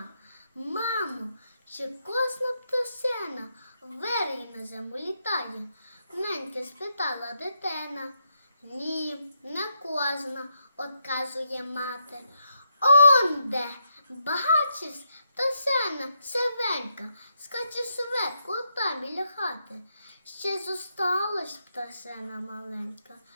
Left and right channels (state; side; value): inverted; both; correlation -0.80